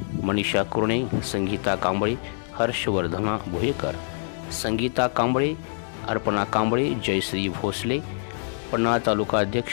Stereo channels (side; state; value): right; silent; digital silence